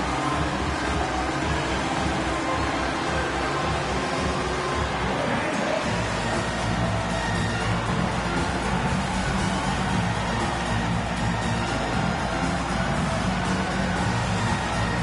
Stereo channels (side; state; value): both; identical; correlation 1.00